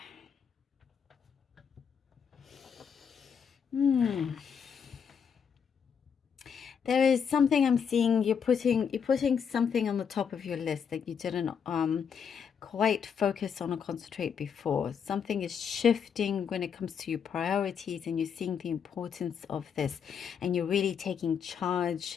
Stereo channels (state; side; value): quieter; right; 7.1 dB